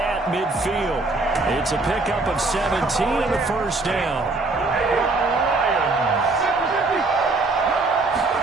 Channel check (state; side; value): quieter; left; 3.3 dB